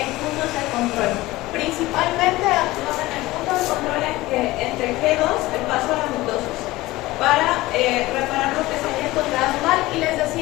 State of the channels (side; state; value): right; quieter; 18.7 dB